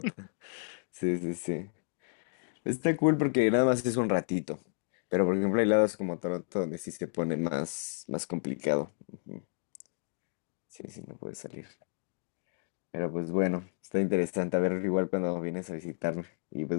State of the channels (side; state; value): right; silent; digital silence